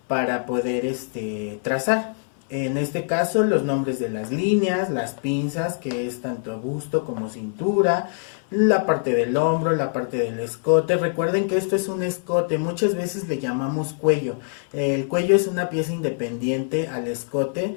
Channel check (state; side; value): silent; right; 60 dB below the other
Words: para poder trazar. En este caso, los nombres de las líneas, las pinzas, que es tanto busto como cintura, la parte del hombro, la parte del escote. Recuerden que esto es un escote, muchas veces le llamamos cuello. El cuello es una pieza independiente al escote,